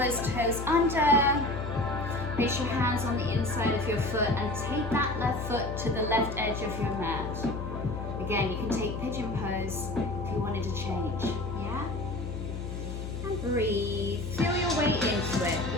toes under. Place your hands on the inside of your foot and take that left foot to the left edge of your mat. Again, you can take pigeon pose if you wanted to change. Yeah? And breathe. Feel your way into it.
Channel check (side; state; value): left; noise; hum, 6 dB below the sound